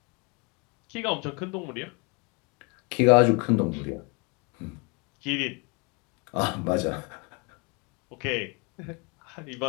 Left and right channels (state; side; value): quieter; right; 31.1 dB